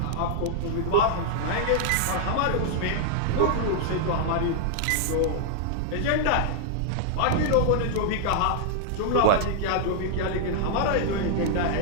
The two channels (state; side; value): different; both; correlation -0.01